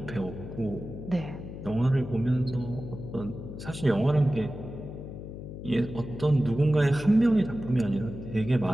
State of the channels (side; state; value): left; noise; hum, 10 dB below the sound